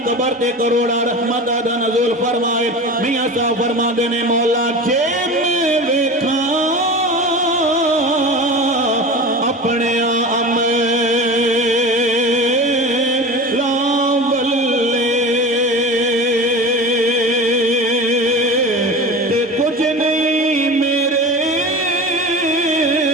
قبر تے کروڑا رحمت دا نزول فرمائے میاں صاحب فرما دینے مولا جے میں ویکھاں اپنے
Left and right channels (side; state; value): both; normal; correlation 0.31